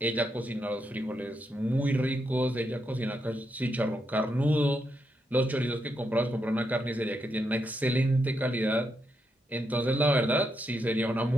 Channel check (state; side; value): normal; both; correlation 0.81